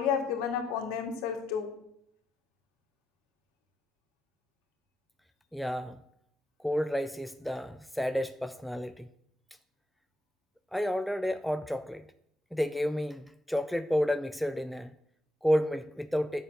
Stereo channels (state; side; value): normal; both; correlation 0.85